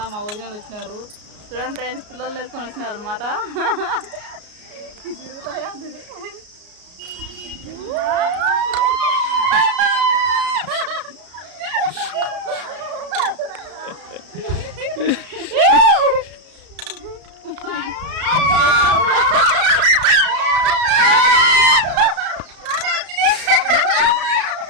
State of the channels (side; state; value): left; late; 33 ms